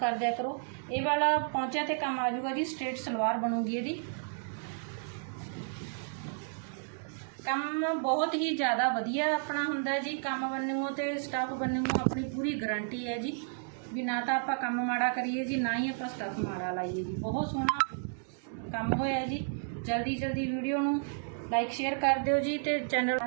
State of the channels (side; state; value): left; silent; digital silence